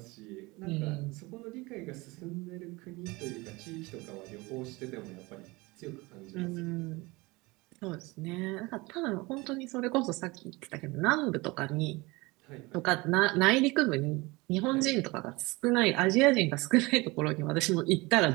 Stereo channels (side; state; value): left; quieter; 23.5 dB